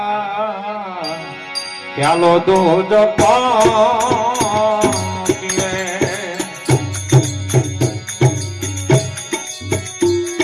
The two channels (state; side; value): identical; both; correlation 1.00